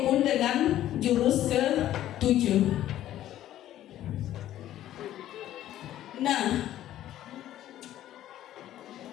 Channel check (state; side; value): quieter; right; 12.8 dB